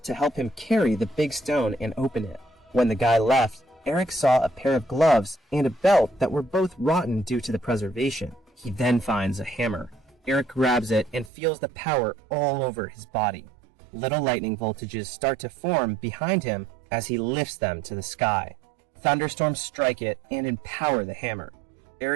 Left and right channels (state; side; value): drops out; left; at 11.3 s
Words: to help him carry the big stone and open it. When the guy left, Eric saw a pair of gloves and a belt that were both rotten due to the preservation. He then finds a hammer. Eric grabs it and feels the power all over his body. Little lightning voltages start to form behind him as he lifts them to the sky. Thunderstorms strike it and empower the hammer.